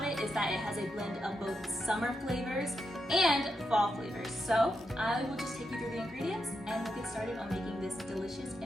it is that it has a blend of both summer flavors and fall flavors. So I will just take you through the ingredients and we'll get started on making this delicious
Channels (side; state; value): both; normal; correlation 0.85